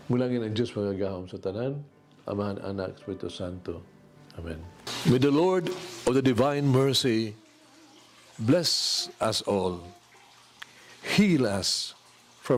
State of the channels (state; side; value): identical; both; correlation 1.00